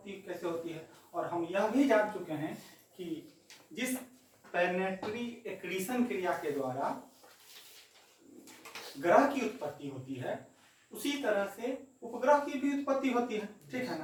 कैसे होती है, और हम यह भी जान चुके हैं कि जिस प्लैनेटरी एक्रीशन क्रिया के द्वारा ग्रह की उत्पत्ति होती है उसी तरह से उपग्रह की भी उत्पत्ति होती है। ठीक है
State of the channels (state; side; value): identical; both; correlation 1.00